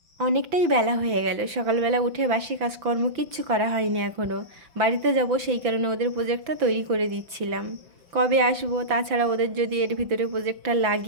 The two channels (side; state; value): left; late; 5.9 ms